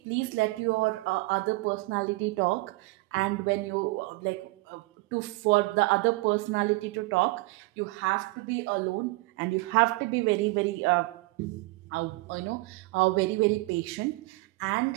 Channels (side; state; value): left; quieter; 22.8 dB